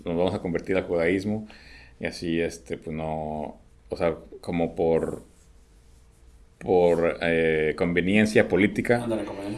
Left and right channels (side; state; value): both; identical; correlation 1.00